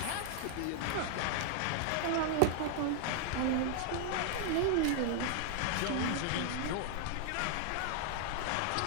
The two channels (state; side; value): different; both; correlation 0.00